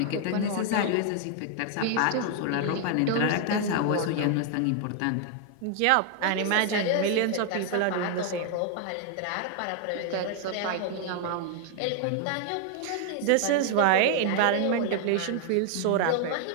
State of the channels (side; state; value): both; different; correlation 0.00